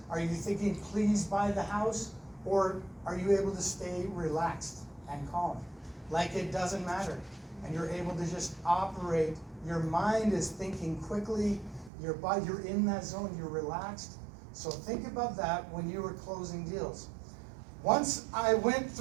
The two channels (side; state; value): left; drops out; at 11.9 s